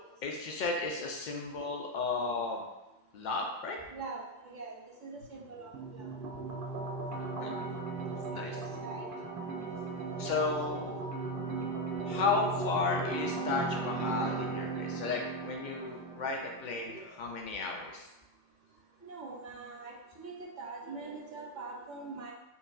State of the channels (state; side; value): late; right; 2.1 ms